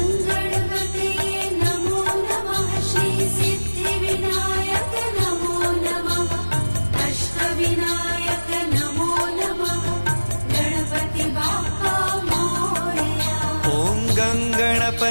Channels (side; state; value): both; inverted; correlation -1.00